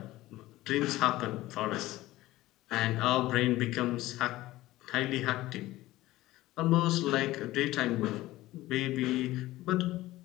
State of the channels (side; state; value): right; quieter; 17.1 dB